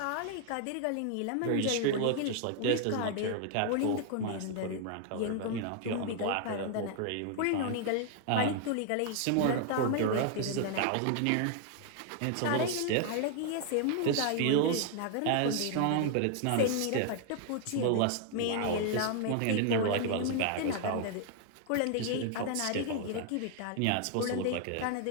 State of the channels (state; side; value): different; both; correlation 0.00